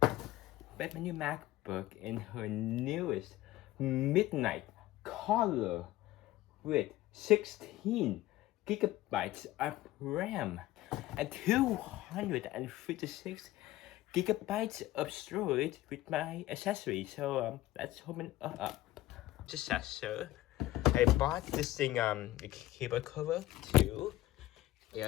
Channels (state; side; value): quieter; right; 16.2 dB